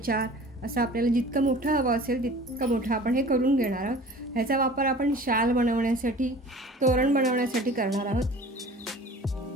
असं आपल्याला जितकं मोठं हवं असेल तितकं मोठं आपण हे करून घेणार आहोत. ह्याचा वापर आपण शाल बनवण्यासाठी, तोरण बनवण्यासाठी करणार आहोत.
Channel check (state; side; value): normal; both; correlation 0.44